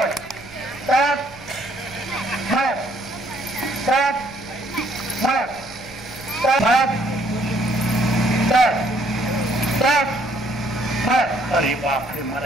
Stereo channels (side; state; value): right; noise; rumble, 22 dB below the sound